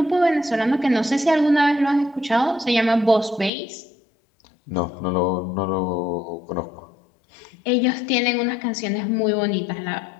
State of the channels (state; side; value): drops out; right; at 3.5 s